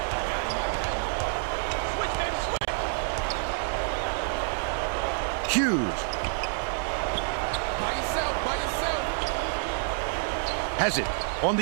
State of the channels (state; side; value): silent; left; digital silence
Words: Hughes. Has it on